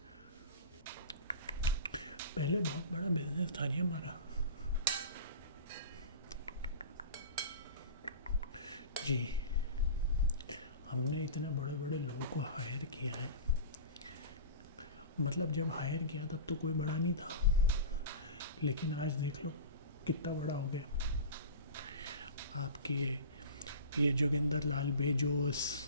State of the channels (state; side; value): inverted; both; correlation -0.33